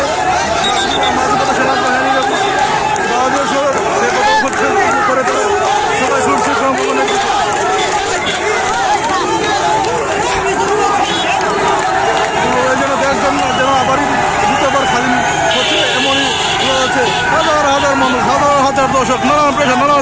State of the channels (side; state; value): both; identical; correlation 1.00